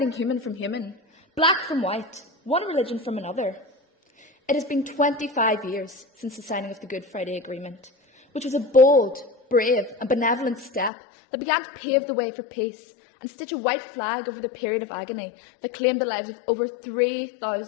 human from human, black from white, one religion from another. It has been 25 years since the signing of the Good Friday Agreement, which was a bold, brave and benevolent step that began to pave the way for peace and stitch a white flag over the period of agony that claimed the lives of over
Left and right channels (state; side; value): drops out; right; at 10.9 s